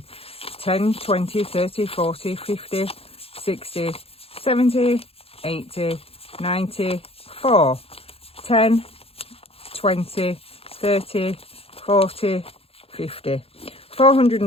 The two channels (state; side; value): late; right; 0.28 ms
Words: 10, 20, 30, 40, 50, 60, 70, 80, 94, 10, 20, 30, 40, 50.